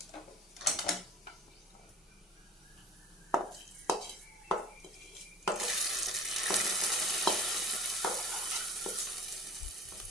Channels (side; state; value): both; normal; correlation 0.46